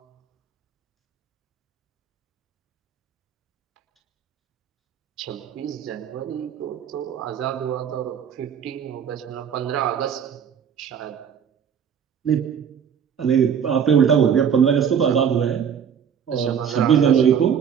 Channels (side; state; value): left; quieter; 7.8 dB